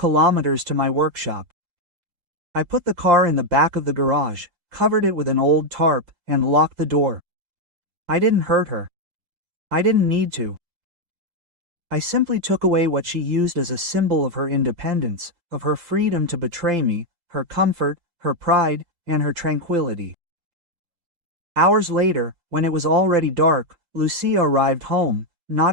to my workshop. I put the car in the back of the garage, covered it with an old tarp, and locked the door. I didn't hurt her. I didn't need to. I simply took away what she used as a symbol of her independence, of her freedom to betray me, her comfort, her pride, and her tranquility. Hours later, when it was already dark, Lucia arrived home, not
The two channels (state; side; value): late; left; 5.8 ms